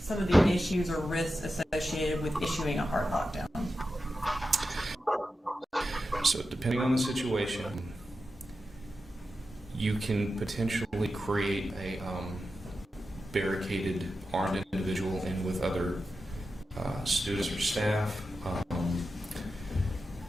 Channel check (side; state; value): both; normal; correlation 0.91